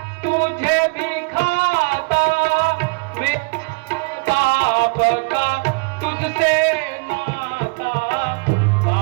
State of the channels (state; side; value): quieter; left; 31.0 dB